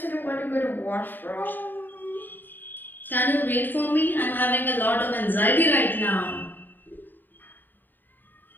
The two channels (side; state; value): right; late; 0.091 ms